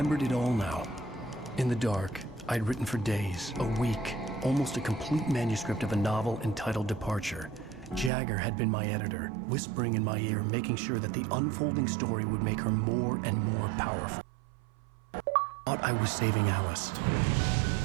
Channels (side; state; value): left; drops out; at 8.1 s